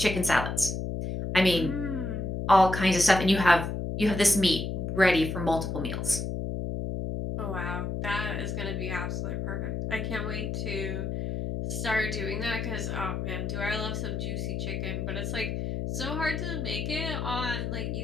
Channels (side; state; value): left; noise; hum, 3 dB below the sound